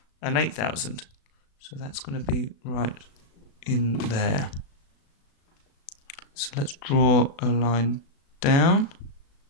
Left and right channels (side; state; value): right; late; 36 ms